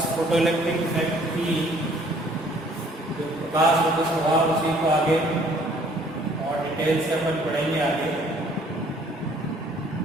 फोटो इलेक्ट्रिक इफेक्ट की जो प्रकाश होता स्वभाव उसी को आगे और डिटेल से अपन पढ़ेंगे आगे।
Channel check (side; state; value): both; normal; correlation 0.59